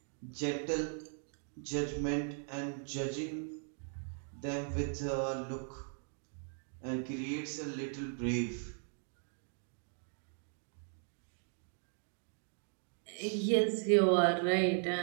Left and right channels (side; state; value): left; silent; 52 dB below the other